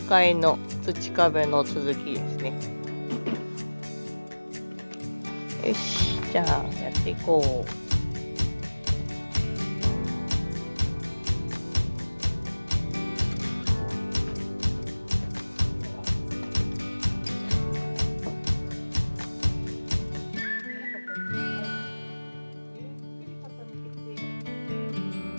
の土壁の続きですね。よし、じゃあやっていこう。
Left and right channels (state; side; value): inverted; both; correlation -1.00